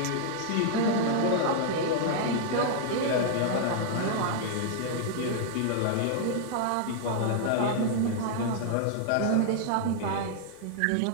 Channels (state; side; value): different; both; correlation -0.01